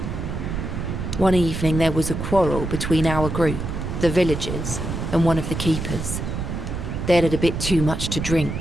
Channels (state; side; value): noise; right; rumble, 4 dB below the sound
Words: One evening there was a quarrel between our group, the villagers, and one of the keepers. They'd had a bit too much to